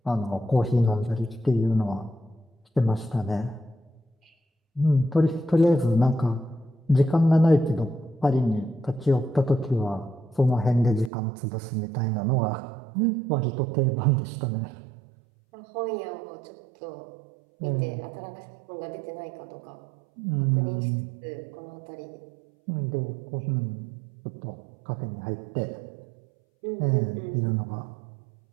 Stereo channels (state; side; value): drops out; left; at 11.1 s